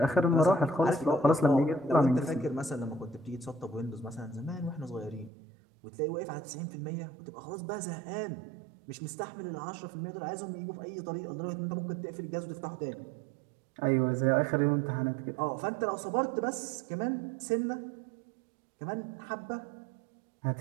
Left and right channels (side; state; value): left; drops out; at 5.3 s